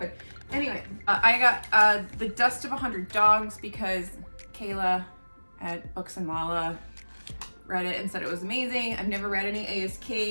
Anyway, I got The Dust of 100 Dogs because Kayla at Books and Mala read it and said it was amazing. I've never read any A.S.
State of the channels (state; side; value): inverted; both; correlation -1.00